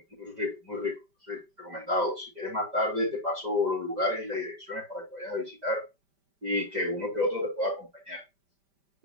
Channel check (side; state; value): left; late; 5.1 ms